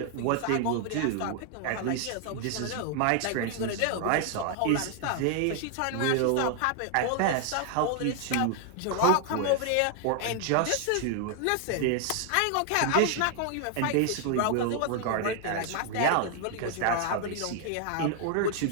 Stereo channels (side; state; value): both; different; correlation 0.00